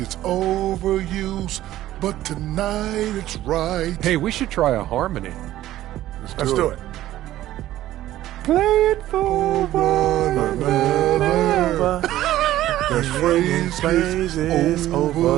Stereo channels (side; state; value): left; quieter; 14.1 dB